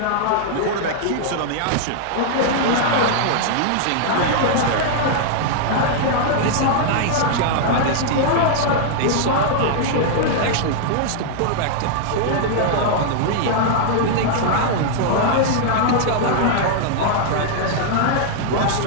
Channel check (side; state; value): both; different; correlation -0.01